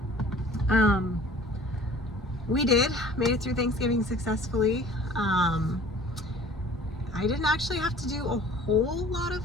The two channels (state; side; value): normal; both; correlation 0.49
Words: We made it through Thanksgiving successfully. I didn't actually have to do a whole lot